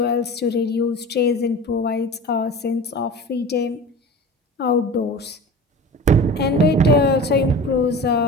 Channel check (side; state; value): both; normal; correlation 0.35